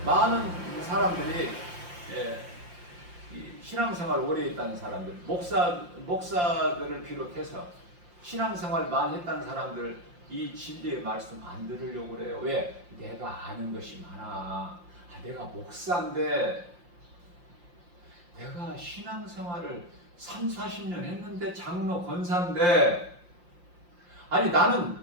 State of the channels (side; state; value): left; late; 5.7 ms